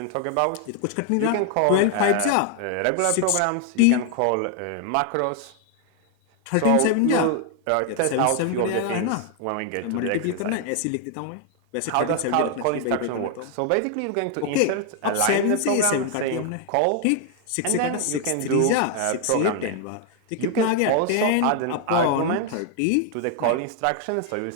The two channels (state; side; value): different; both; correlation 0.00